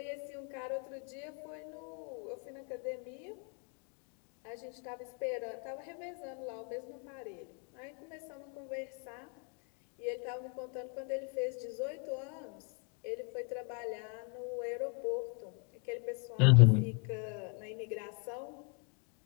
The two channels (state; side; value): quieter; right; 34.7 dB